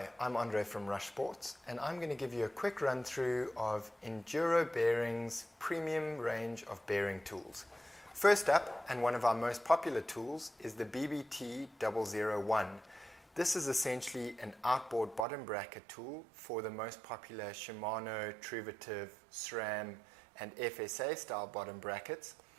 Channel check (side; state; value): left; drops out; at 15.2 s